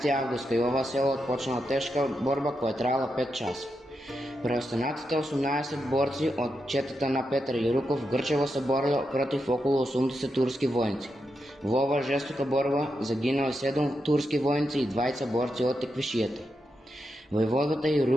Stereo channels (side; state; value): both; normal; correlation 0.86